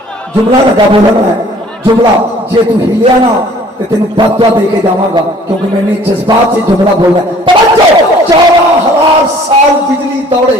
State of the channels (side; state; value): both; normal; correlation 0.54